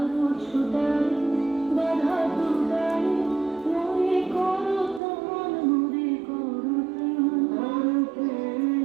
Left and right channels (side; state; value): left; drops out; at 5.0 s